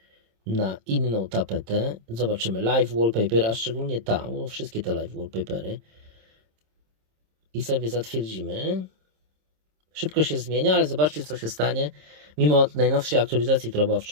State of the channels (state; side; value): late; left; 26 ms